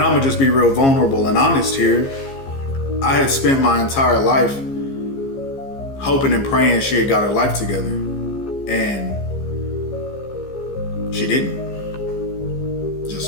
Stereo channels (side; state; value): right; late; 15 ms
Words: gonna just be real vulnerable and honest here. I had spent my entire life hoping and praying she had got her life together, and she didn't.